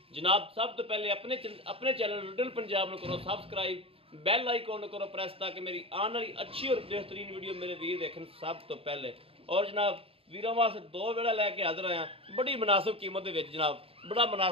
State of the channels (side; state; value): left; late; 0.27 ms